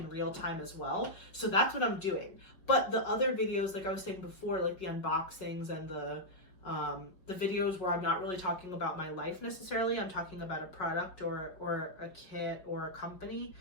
real time as well. So that's what I'm doing. But the other videos, like I was saying before, like the unboxings and the videos where I'm not really talking about my life necessarily, I'm talking about a product or a kit or a company,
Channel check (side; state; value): right; late; 5.4 ms